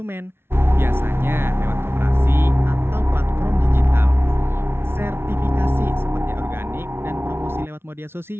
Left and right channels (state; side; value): late; left; 0.12 ms